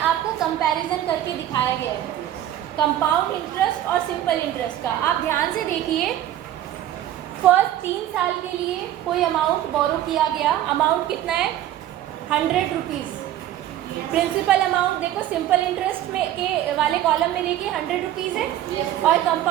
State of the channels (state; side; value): quieter; left; 12.4 dB